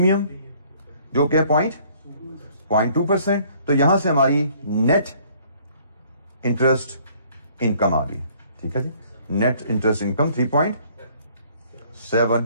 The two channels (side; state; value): both; inverted; correlation -0.59